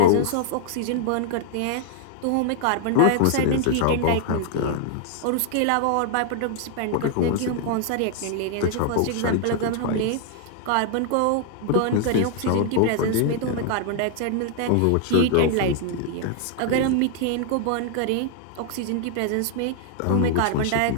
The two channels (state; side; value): different; both; correlation 0.00